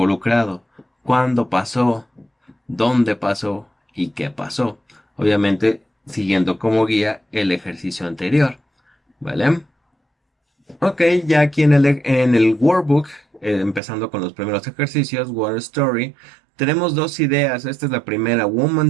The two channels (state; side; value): drops out; left; at 13.8 s